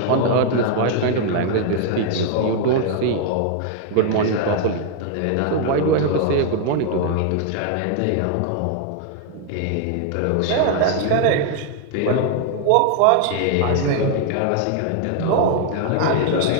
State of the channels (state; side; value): different; both; correlation 0.00